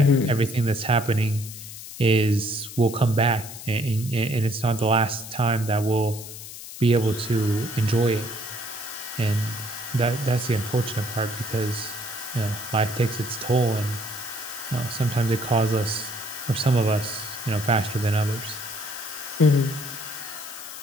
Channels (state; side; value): noise; left; hiss, 12 dB below the sound